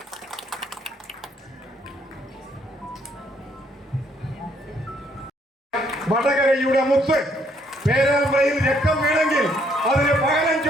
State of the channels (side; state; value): both; normal; correlation 0.68